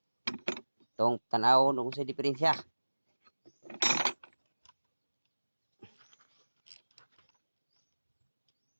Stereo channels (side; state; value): both; inverted; correlation -1.00